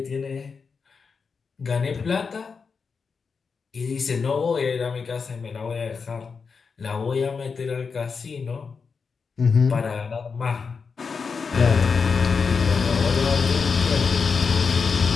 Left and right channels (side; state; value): right; quieter; 5.3 dB